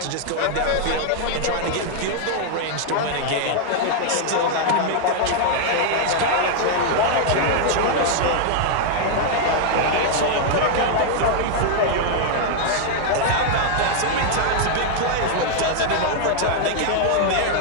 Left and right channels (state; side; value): different; both; correlation 0.00